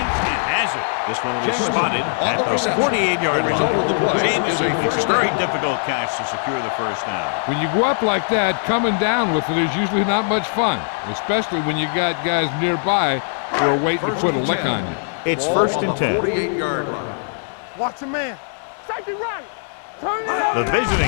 has it. This one was spotted at the 48-yard line. Jameson makes a very difficult catch to secure the first down. When you go up like that, coming down with it is usually not much fun, especially when you got guys nearby who are waiting to put a lick on you. It's first and 10. 48-yard line. Watch a man. Safety right. Turn it The up.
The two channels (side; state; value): right; silent; digital silence